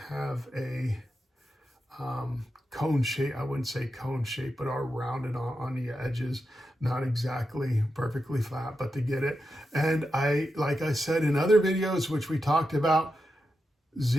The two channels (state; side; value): normal; both; correlation 0.88